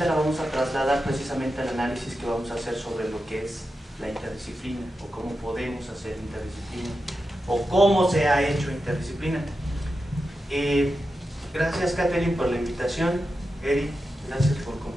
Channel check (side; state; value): both; normal; correlation 0.90